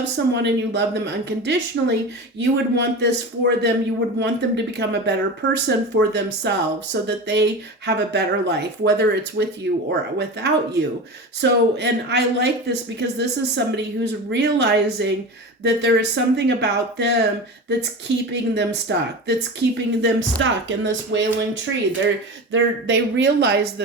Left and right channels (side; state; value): both; normal; correlation 0.28